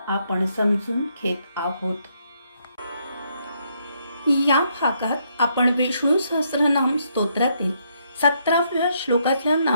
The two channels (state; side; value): inverted; both; correlation -0.74